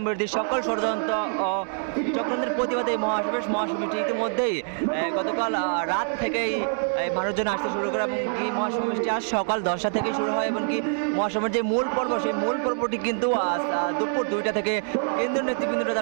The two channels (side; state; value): left; silent; 61 dB below the other